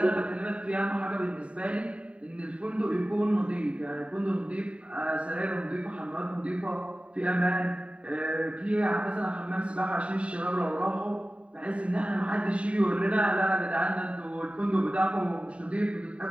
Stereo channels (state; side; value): late; left; 0.063 ms